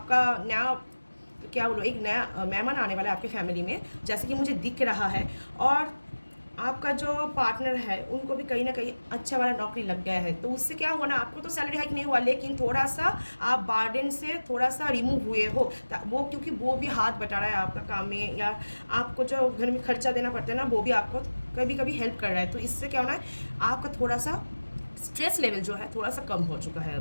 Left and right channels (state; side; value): inverted; both; correlation -1.00